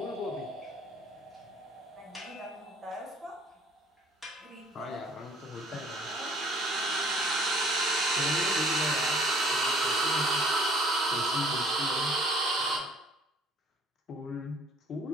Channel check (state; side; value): normal; both; correlation 0.55